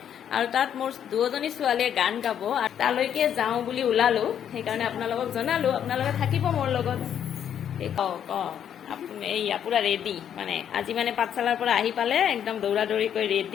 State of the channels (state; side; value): quieter; right; 9.2 dB